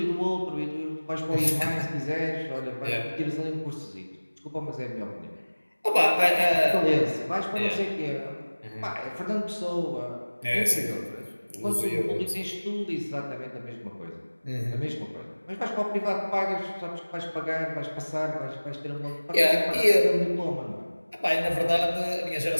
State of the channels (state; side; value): inverted; both; correlation -1.00